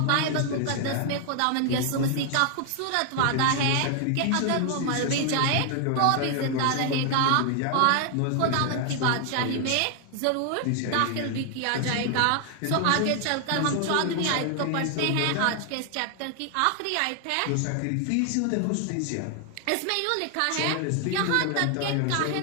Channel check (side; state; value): both; different; correlation 0.00